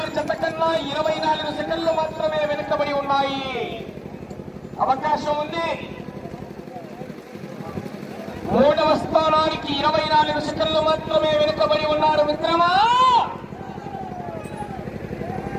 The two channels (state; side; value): identical; both; correlation 1.00